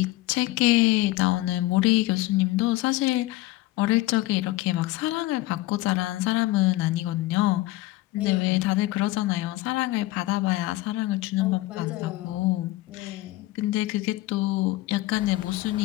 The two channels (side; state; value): right; quieter; 17.8 dB